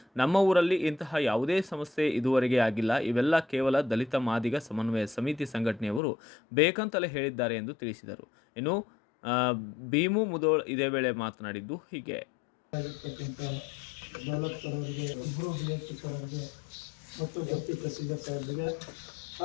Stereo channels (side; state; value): right; drops out; at 6.0 s